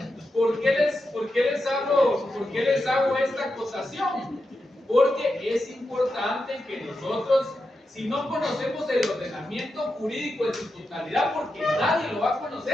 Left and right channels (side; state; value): both; normal; correlation 0.88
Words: ¿por qué les hago esta acotación? Porque es importante que nosotros, si no conocemos el ordenamiento jurídico en su totalidad, porque nadie lo va a